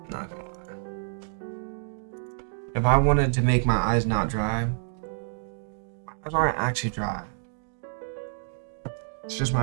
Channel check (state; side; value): silent; left; 59 dB below the other